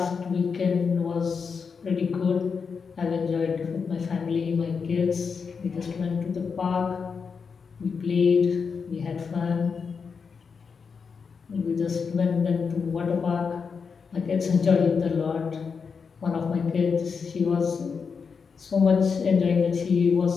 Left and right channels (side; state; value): right; quieter; 5.7 dB